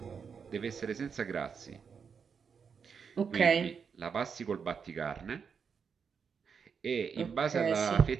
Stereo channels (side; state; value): left; quieter; 6.3 dB